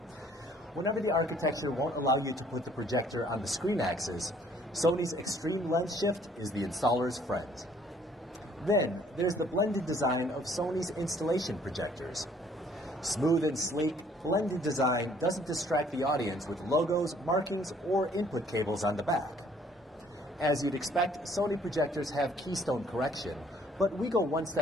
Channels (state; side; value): normal; both; correlation 0.61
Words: Whenever the architecture won't allow you to put the projector on the screen axis, Sony's Extreme Lens Shift is the installer's friend. Then, there's the blended design of Sony's installation projectors. Smooth and sleek, blended design doesn't distract the audience with logos, markings, or input cables on the back. As you'd expect, Sony projectors have keystone correction, but we go one